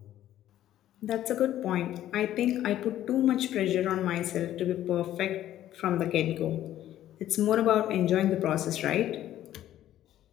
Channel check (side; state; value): right; quieter; 12.6 dB